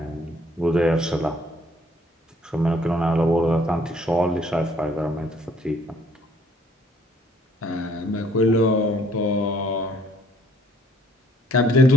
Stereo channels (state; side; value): normal; both; correlation 0.62